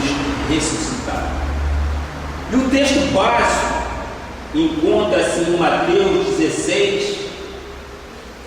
ressuscitado. E o texto básico encontra-se em Mateus 16,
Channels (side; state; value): both; identical; correlation 1.00